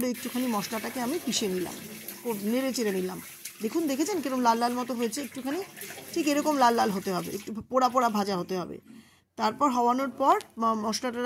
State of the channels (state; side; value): identical; both; correlation 1.00